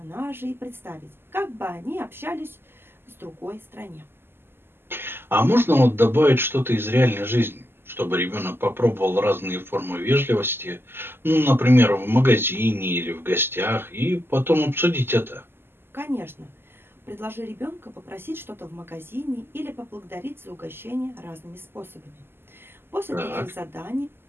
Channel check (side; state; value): left; late; 0.11 ms